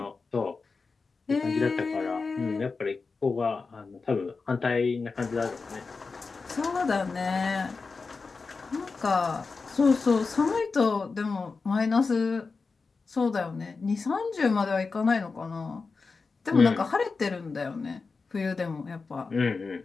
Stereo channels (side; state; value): right; quieter; 4.4 dB